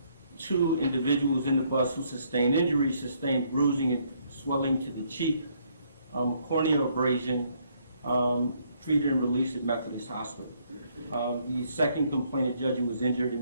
2 individuals in the bus who sustained injuries sustained bruising and swelling to the cheek, corneal abrasion, treated and released at Methodist Hospital. The second complainant, Judge, who was injured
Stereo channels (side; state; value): both; inverted; correlation -0.69